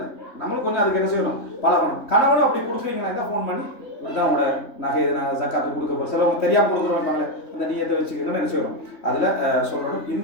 நம்மளும் கொஞ்சம் அதுக்கு என்ன செய்யணும் பழகணும். கணவனும் அப்படி கொடுக்குறீங்கன்னா ஃபோன் பண்ணி இதுதான் உங்களோட நகை ஜக்காத்து கொடுக்க போகிற சிலவங்க தெரியாமல் கொடுக்குறோம் அந்த நீயத்தை வச்சுக்கணும் என்ன செய்யணும் அதில் சொல்லணும்.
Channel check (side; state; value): right; late; 3.2 ms